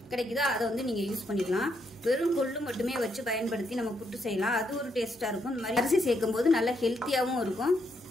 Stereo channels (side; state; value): both; normal; correlation 0.77